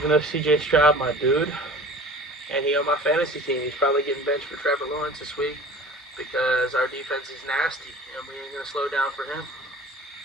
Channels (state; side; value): normal; both; correlation 0.41